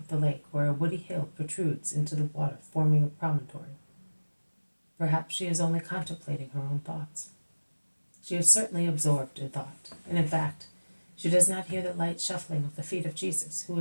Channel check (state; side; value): inverted; both; correlation -1.00